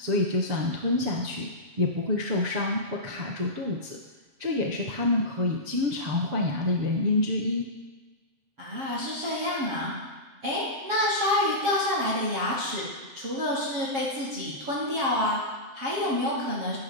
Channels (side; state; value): left; late; 7.6 ms